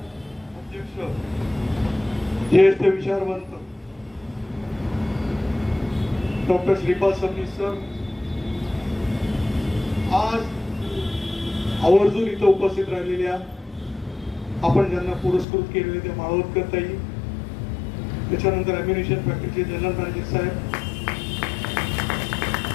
अध्यक्ष ज्येष्ठ विचारवंत डॉक्टर श्रीपाद सबनीस सर आज आवर्जून इथं उपस्थित राहिलेल्या आपण ज्यांना पुरस्कृत केलेले ते माळवतकर ताई, त्याच्यानंतर अम्युनिशन फॅक्टरीचे जनरल मॅनेजर साहेब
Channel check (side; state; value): right; drops out; at 15.5 s